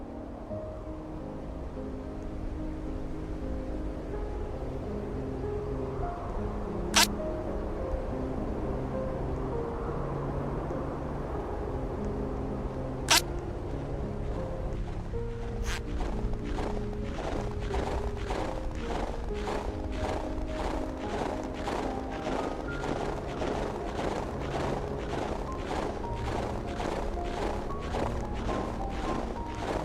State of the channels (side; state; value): both; identical; correlation 1.00